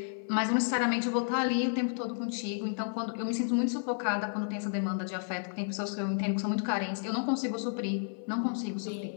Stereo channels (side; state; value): right; silent; 57 dB below the other